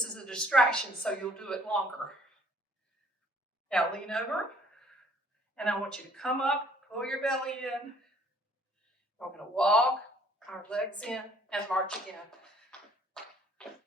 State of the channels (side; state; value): both; normal; correlation 0.60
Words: is a distraction, so you'll do it longer. Now lean over, and I want you to come up, pull your belly in. We're going to walk our legs in and march again.